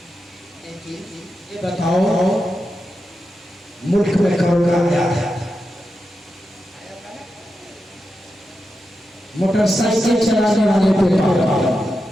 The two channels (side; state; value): both; normal; correlation 0.89